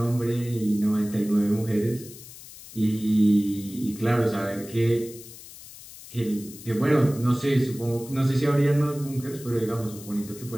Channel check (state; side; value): noise; left; hiss, 17 dB below the sound